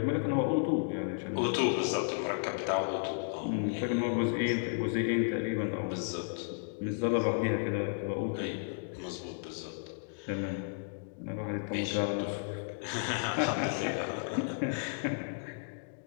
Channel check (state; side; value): silent; right; digital silence